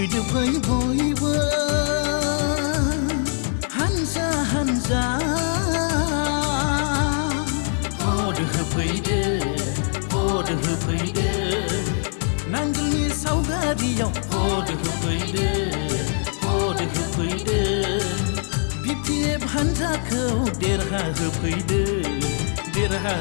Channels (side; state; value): right; silent; 64 dB below the other